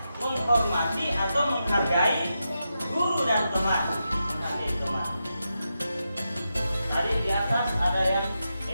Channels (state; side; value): inverted; both; correlation -0.88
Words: menghormati atau menghargai guru dan teman. Tadi di atas ada yang